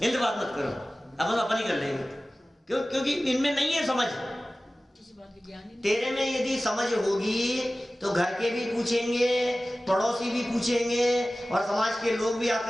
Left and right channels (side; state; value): both; normal; correlation 0.97